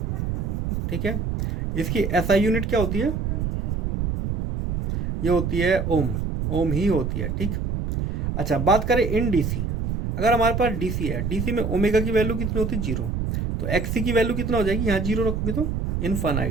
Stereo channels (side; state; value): right; noise; rumble, 1 dB below the sound